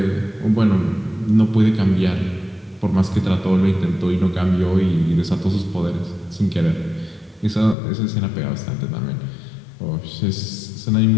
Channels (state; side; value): drops out; right; at 7.8 s